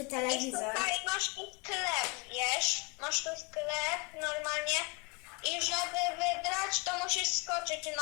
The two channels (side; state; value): right; quieter; 28.2 dB